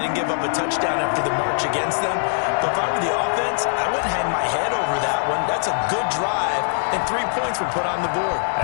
give up a touchdown after the march against them. But if I were the offense, I wouldn't hang my head over that one. That's a good drive, and 3 points were put on the board.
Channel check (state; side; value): silent; right; digital silence